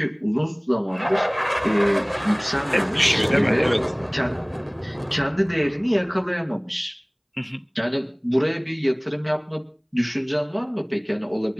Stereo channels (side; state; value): both; identical; correlation 1.00